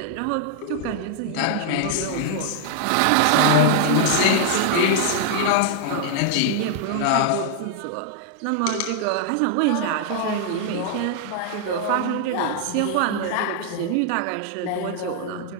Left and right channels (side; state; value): both; different; correlation 0.00